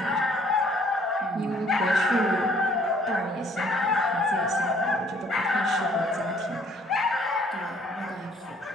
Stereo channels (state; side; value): normal; both; correlation 0.61